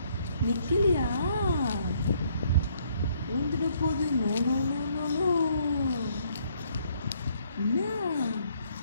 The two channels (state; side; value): inverted; both; correlation -0.67